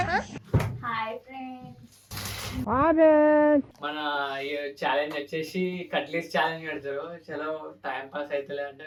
మన ఛాలెంజ్ వచ్చేసి కట్లీస్ ఛాలెంజ్ పెడతారు. చలో టైం పాస్ అవుతలే అంటే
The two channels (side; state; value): both; identical; correlation 1.00